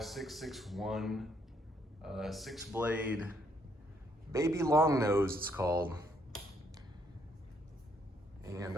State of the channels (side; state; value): both; normal; correlation 0.70